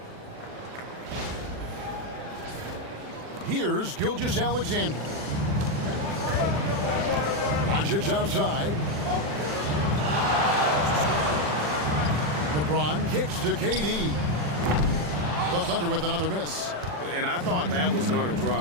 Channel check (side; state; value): left; late; 40 ms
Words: Here's Gilgeous-Alexander. Doncic outside. LeBron kicks to KD. The Thunder with another miss. And I thought that was going to